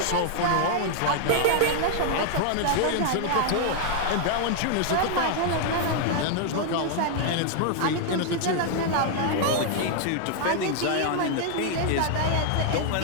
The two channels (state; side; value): different; both; correlation 0.00